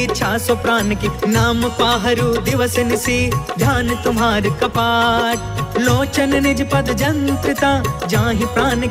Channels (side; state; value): both; identical; correlation 1.00